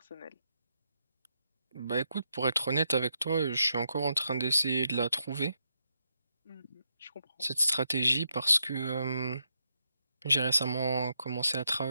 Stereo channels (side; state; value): both; inverted; correlation -0.81